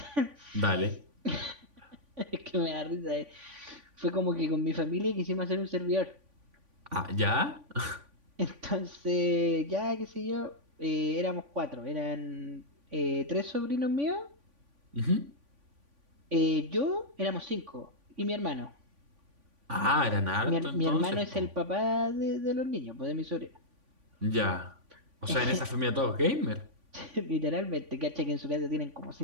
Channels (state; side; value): late; left; 3.5 ms